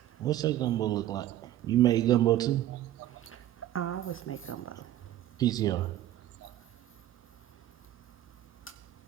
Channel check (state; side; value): quieter; left; 13.3 dB